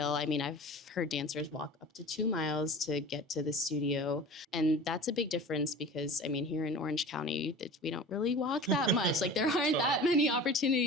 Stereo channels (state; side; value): normal; both; correlation 0.37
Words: I mean, I've heard dancers walk up to 2 miles to get to the studio. And that's a big difference because, I mean, here in Orange County, we don't really walk that much. Like there aren't that many